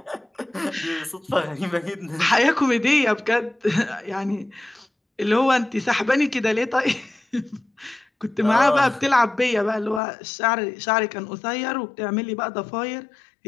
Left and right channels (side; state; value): right; drops out; at 10.0 s